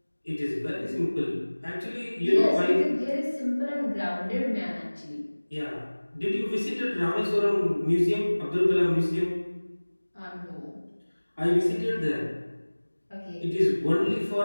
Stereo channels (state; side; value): inverted; both; correlation -1.00